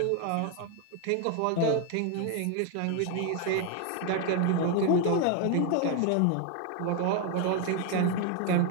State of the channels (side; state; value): both; different; correlation 0.01